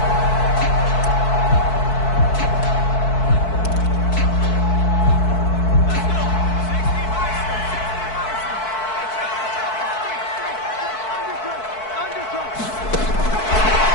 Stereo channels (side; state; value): right; late; 4.6 ms